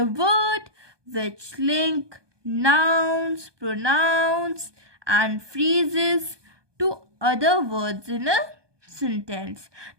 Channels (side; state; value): left; late; 1.2 ms